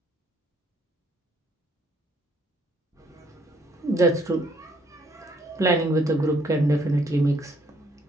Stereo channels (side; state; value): both; normal; correlation 0.66